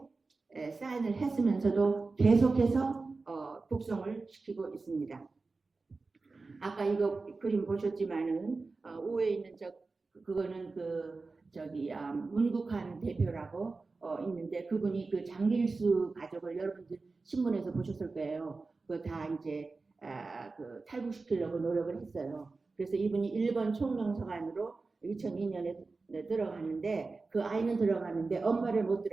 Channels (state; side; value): quieter; left; 3.9 dB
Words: 사인을 했으면서도 계속해서 북송을 시키고 있습니다. 아까 이거 그림 보셨지만은 우에 있는 그거는 문국한 대표라고 있는데 그분이 그 장길수 가족을 여러분들 신문에서 보셨을 거예요. 그거 다 이제 그 탈북시키려고 노력을 했어요. 그래서 이분이 일본 총명서관으로 2002년에 들어가는데 그 아이는 들어가는데 엄마를 못